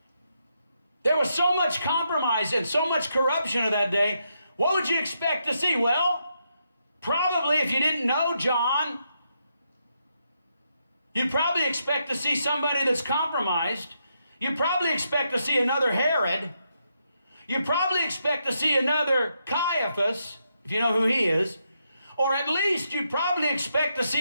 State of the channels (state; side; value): inverted; both; correlation -0.81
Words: There was so much compromise and so much corruption of that day. What would you expect to see? Well, probably if you didn't know John, you'd probably expect to see somebody that's compromised. You'd probably expect to see another Herod. You'd probably expect to see another Caiaphas, if you know who he is. Or at least you'd probably expect to